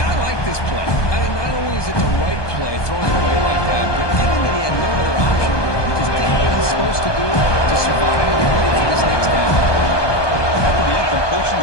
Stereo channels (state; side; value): late; right; 1.2 ms